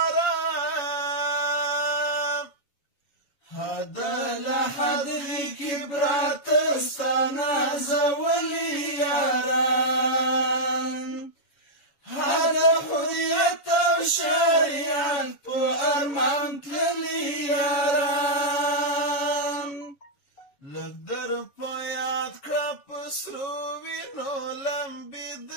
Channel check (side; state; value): right; late; 7.1 ms